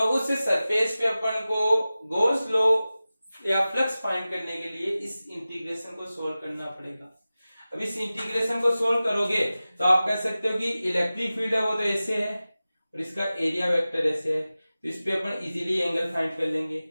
उस सरफेस पे अपन को गॉस लॉ या फ्लक्स फाइंड करने के लिए इस इंटीग्रेशन को सोल्व करना पड़ेगा। अब इस इंटीग्रेशन को सोल्व करोगे तो आप कह सकते हो कि इलेक्ट्रिक फील्ड है वो तो ऐसे है और इसका एरिया वेक्टर ऐसे है, तो इस पे अपन इजीली एंगल फाइंड कर लेंगे।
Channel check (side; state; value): both; inverted; correlation -0.96